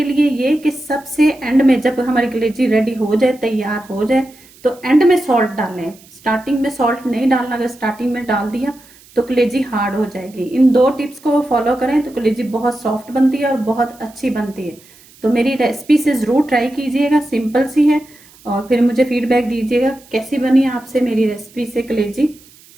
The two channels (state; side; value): noise; right; hiss, 26 dB below the sound